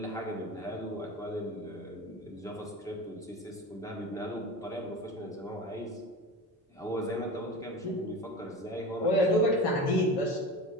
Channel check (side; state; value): both; normal; correlation 0.30